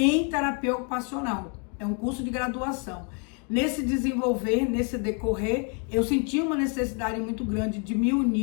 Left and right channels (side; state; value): right; quieter; 38.3 dB